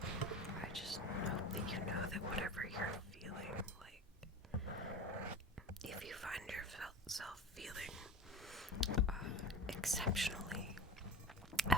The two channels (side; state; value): both; normal; correlation 0.32